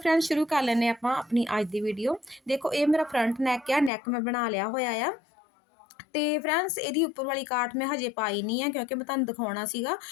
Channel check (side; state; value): right; drops out; at 3.9 s